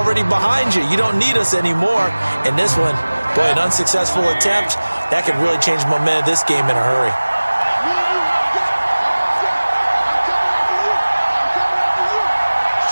behind you. You don't need us anymore. And this one, boy, an unsuccessful attempt. That could really change the momentum of this game in a hurry.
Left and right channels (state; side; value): inverted; both; correlation -1.00